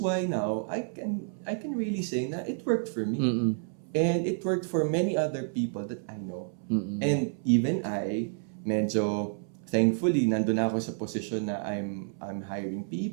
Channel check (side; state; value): left; silent; 58 dB below the other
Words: now I can really say na it worked for me. And it worked for many other people that I know. And even I, medyo thankfully, nandun ako sa position na I'm hiring